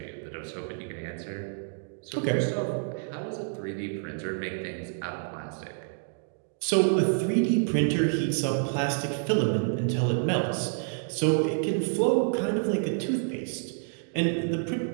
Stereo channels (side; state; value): left; silent; 59 dB below the other